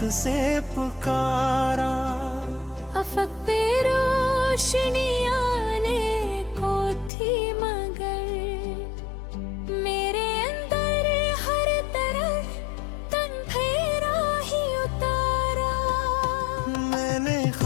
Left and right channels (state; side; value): drops out; right; at 7.1 s